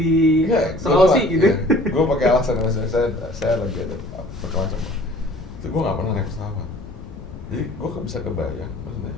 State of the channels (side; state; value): left; noise; rumble, 13 dB below the sound